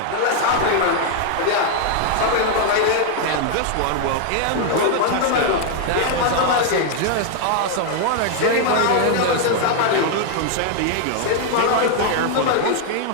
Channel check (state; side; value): different; both; correlation 0.00